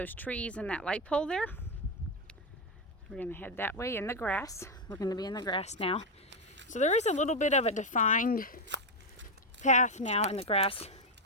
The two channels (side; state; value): both; normal; correlation 0.06